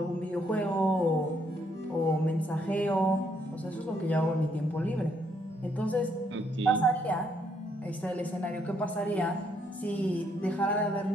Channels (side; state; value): both; normal; correlation 0.72